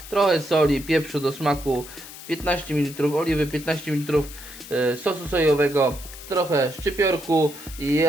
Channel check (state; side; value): noise; left; hiss, 15 dB below the sound